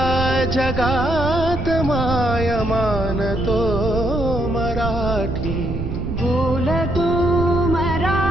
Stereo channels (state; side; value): noise; right; rumble, 4 dB below the sound